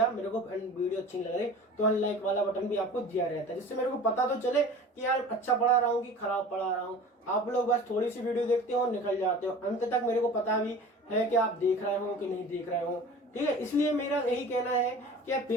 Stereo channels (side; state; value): both; normal; correlation 0.40